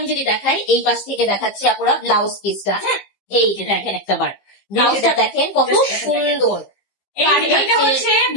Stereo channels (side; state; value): right; late; 15 ms